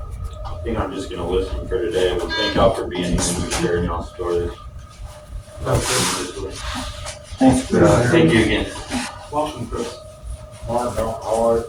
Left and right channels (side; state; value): both; identical; correlation 1.00